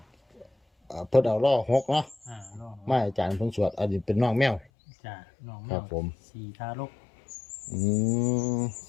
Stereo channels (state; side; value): drops out; right; at 4.7 s